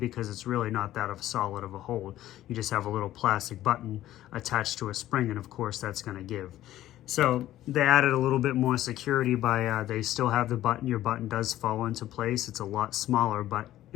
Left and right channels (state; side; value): quieter; right; 13.8 dB